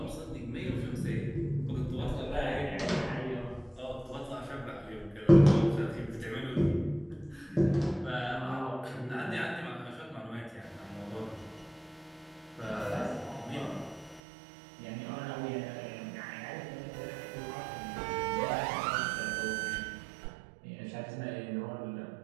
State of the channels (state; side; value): drops out; left; at 14.2 s